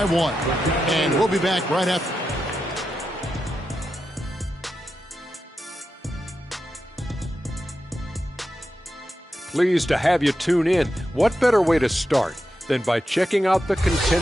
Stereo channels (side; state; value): both; normal; correlation 0.89